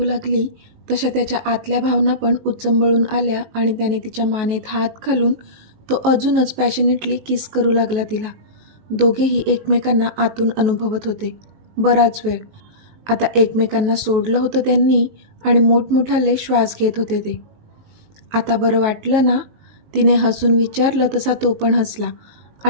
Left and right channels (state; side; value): late; left; 19 ms